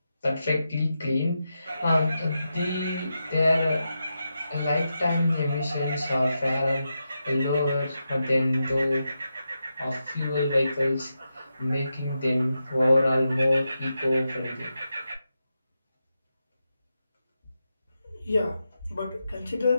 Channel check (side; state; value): both; inverted; correlation -0.88